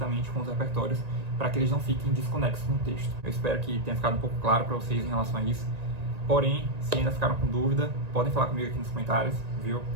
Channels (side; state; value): left; late; 1.9 ms